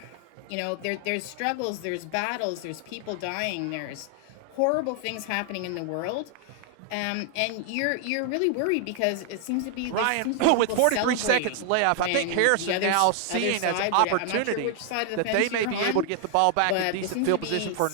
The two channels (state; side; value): different; both; correlation 0.00